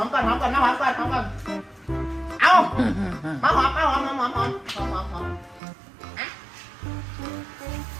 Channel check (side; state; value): left; drops out; at 5.6 s